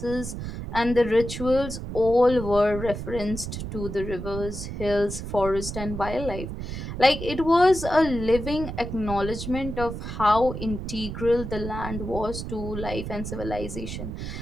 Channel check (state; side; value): noise; right; rumble, 7 dB below the sound